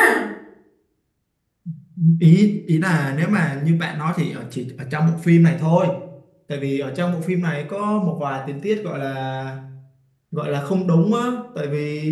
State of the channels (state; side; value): identical; both; correlation 1.00